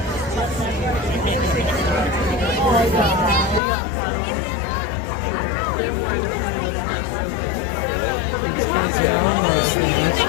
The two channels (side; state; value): right; drops out; at 3.6 s